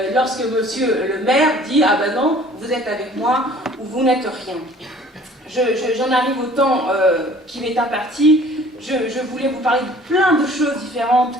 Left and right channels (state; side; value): normal; both; correlation 0.51